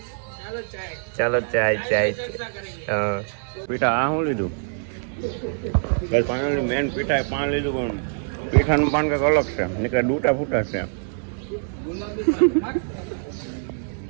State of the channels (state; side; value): silent; left; digital silence